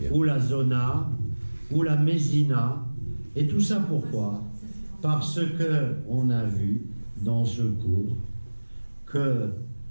ou la zona, ou la mésina, et tout ça pourquoi? Parce que on a vu dans ce cours que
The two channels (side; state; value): both; inverted; correlation -1.00